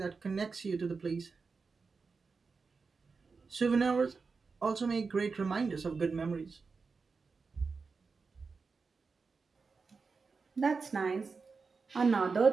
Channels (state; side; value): quieter; left; 4.7 dB